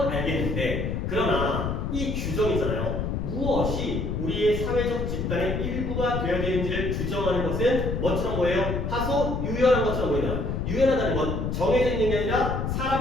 알겠는데 그러나 이 규정이잖아요. 무엇이 우리의 사회적 집단의 일부가 되어야 되는지를 규정하는 것은 뭐처럼 보여요? 다소 유연한 것처럼 보이나? 유연하다는 건 정해져 있는 게 아니라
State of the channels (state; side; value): noise; left; rumble, 2 dB below the sound